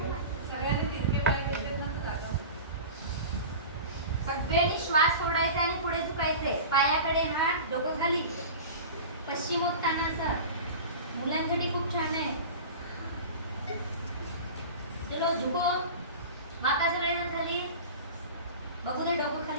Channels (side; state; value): both; inverted; correlation -0.34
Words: सगळ्यांनी श्वास सोडायचा आणि पुढे झुकायचे. पायाकडे हात, डोकं खाली. पश्चिमोत्तानासन मुलांसाठी खूप छान आहे. चलो झुको. माता सगळेजण खाली. बघू दे डोकं